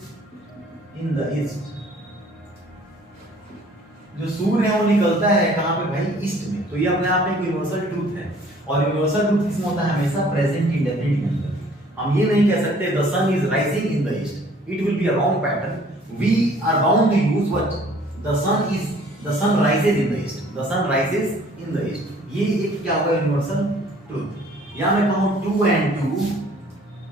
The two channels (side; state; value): both; normal; correlation 0.55